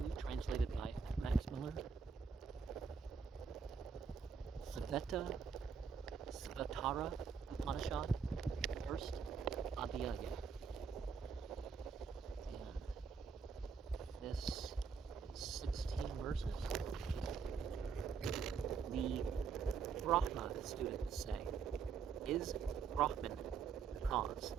translated by Max Muller. Svetasvatara Upanishad, first Adhyaya. And this is 16 verses. The Brahma students say, is Brahman the cause?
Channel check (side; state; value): left; quieter; 5.9 dB